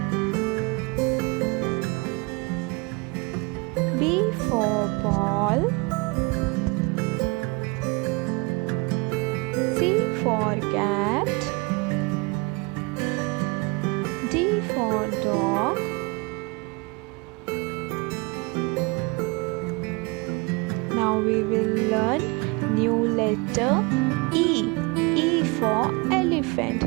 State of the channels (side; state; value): left; quieter; 28.1 dB